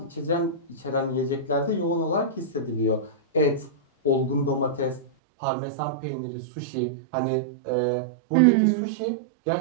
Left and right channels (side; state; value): left; drops out; at 5.1 s